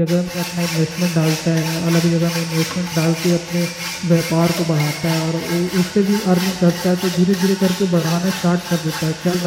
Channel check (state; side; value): identical; both; correlation 1.00